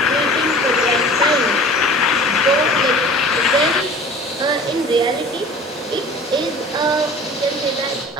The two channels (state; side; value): normal; both; correlation 0.44